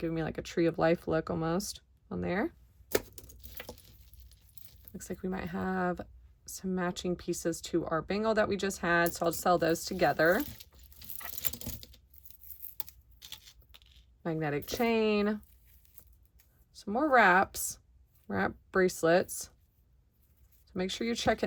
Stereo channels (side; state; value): both; identical; correlation 1.00